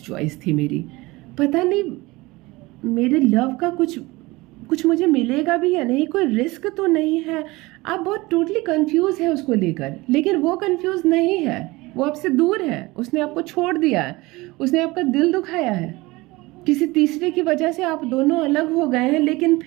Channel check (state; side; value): quieter; left; 21.7 dB